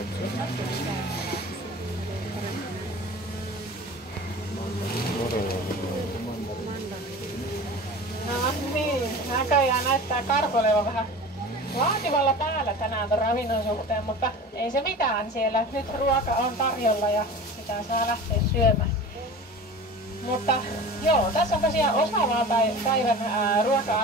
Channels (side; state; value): both; normal; correlation 0.36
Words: co? No niin, näköjään näyttää karhu olevan vähän vaativalla päällä tänään ton ravinnon suhteen, mutta ei se mitään siellä. Nyt ruoka on tarjolla ja sitä saa lähteä syömään. Mutta joo, tässä on tosiaan osa vaan päivän